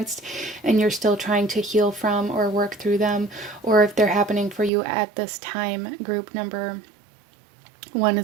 and you're still trying to heal from or work through them, or if they're happening for you at this time. Group number one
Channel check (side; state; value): left; drops out; at 4.7 s